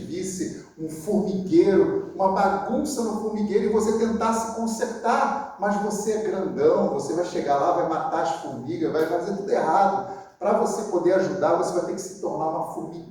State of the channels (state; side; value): identical; both; correlation 1.00